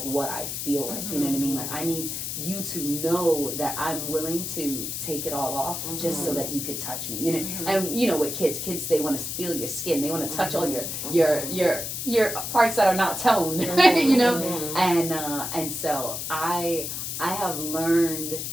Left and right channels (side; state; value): left; noise; hiss, 4 dB below the sound